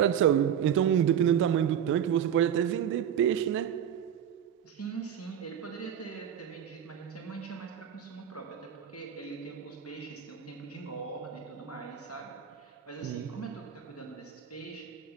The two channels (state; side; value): quieter; left; 9.0 dB